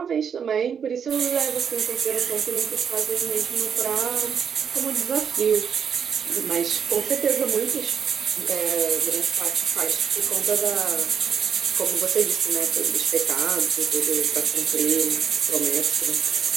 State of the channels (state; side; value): quieter; left; 7.4 dB